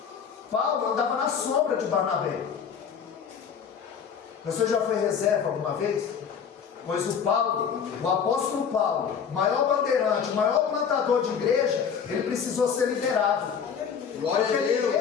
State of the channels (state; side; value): quieter; right; 7.1 dB